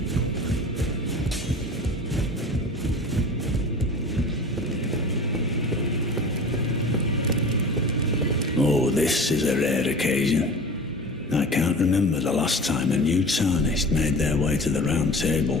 Oh, this is a rare occasion. I can't remember the last time a new tarnished made their way to the Round Table.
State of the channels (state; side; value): normal; both; correlation 0.37